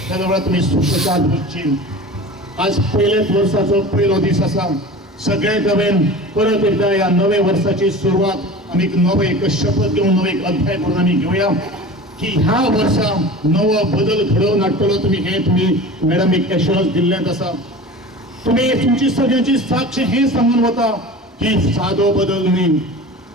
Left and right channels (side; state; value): both; normal; correlation 0.36